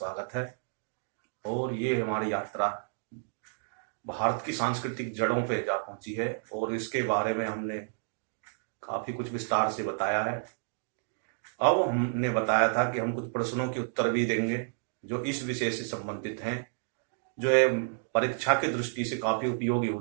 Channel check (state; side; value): silent; left; digital silence